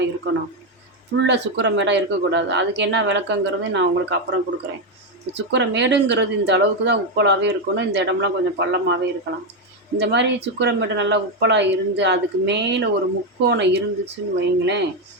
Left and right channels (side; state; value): both; normal; correlation 0.07